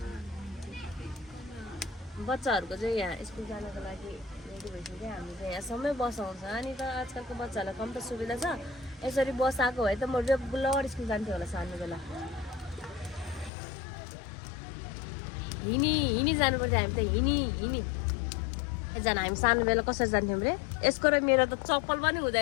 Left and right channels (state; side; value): drops out; right; at 13.5 s